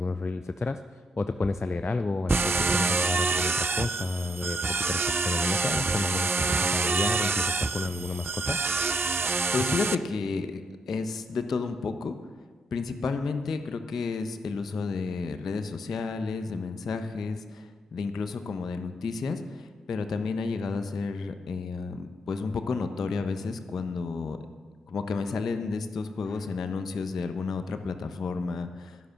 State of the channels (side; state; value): both; normal; correlation 0.76